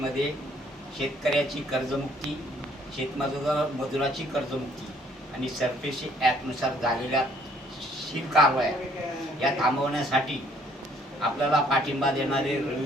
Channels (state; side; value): normal; both; correlation 0.63